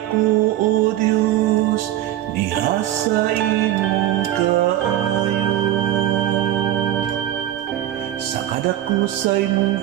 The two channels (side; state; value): left; quieter; 12.9 dB